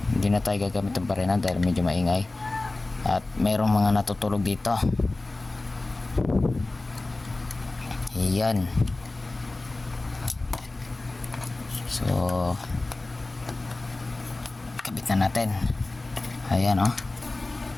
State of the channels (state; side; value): quieter; right; 3.1 dB